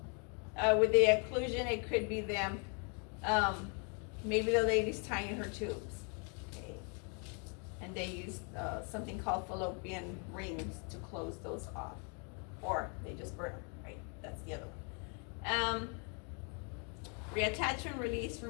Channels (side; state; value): right; quieter; 37.5 dB